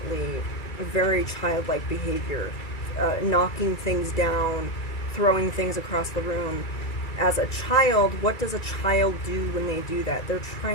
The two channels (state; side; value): late; right; 2.3 ms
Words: very childlike behavior. Knocking things down, throwing things across the room. As a child, what does a child do when they do that? They're